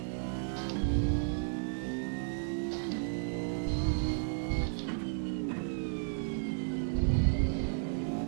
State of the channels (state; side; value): silent; left; 55 dB below the other